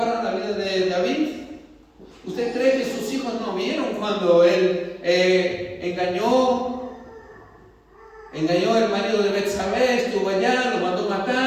la vida de David? ¿Usted cree que sus hijos no vieron cuando él engañó el marido de Betsabé, estuvo allá, lo mandó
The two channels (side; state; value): both; identical; correlation 1.00